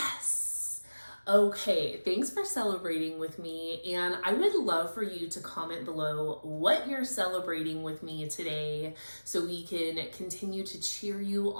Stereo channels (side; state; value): both; inverted; correlation -1.00